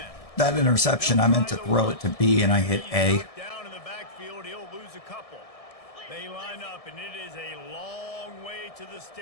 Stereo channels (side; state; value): right; late; 1.7 ms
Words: That interception, I meant to throw it to B and I hit A. Down in the backfield, he'll lose a couple. They line up, and it is a long way to the